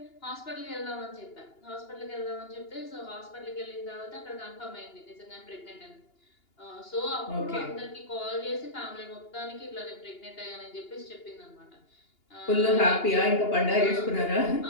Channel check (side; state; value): right; late; 2.8 ms